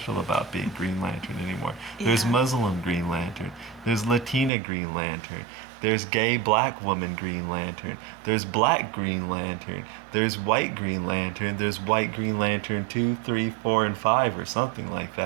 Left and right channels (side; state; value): left; drops out; at 4.5 s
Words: about being Green Lantern anymore. There's Yeah. Muslim Green Lantern, there's Latina Green Lantern, there's gay black woman Green Lantern, there's black Green Lantern, there's white Green Lantern, there's white Green Lantern 2, 3, 4, and 5, or something like